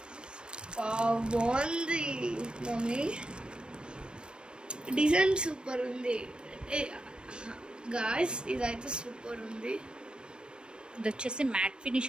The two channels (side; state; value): left; late; 0.054 ms